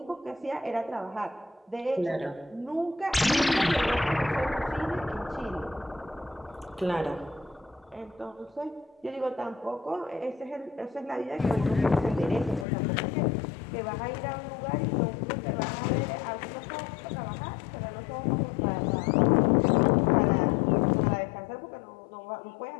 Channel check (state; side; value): drops out; right; at 12.7 s